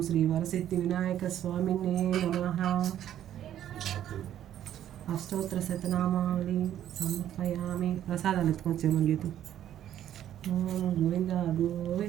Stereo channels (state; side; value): quieter; left; 11.2 dB